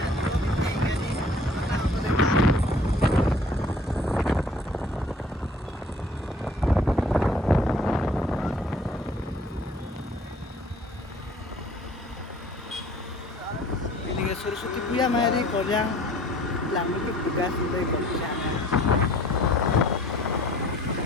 Sursuti Puya Mari Koryang Lamu ke tugas dari komisana.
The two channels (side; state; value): both; normal; correlation 0.53